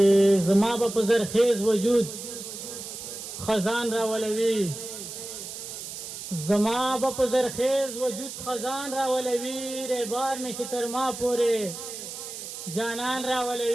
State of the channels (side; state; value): right; noise; hiss, 9 dB below the sound